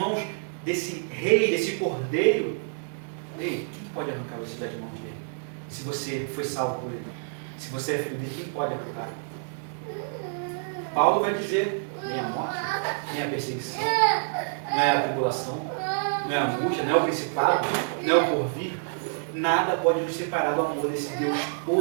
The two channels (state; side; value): silent; left; digital silence